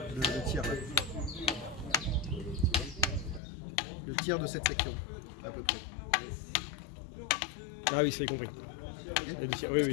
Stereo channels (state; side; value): drops out; right; at 3.4 s